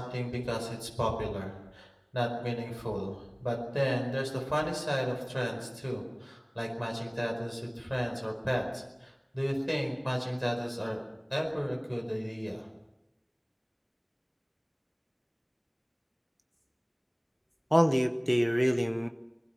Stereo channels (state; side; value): identical; both; correlation 1.00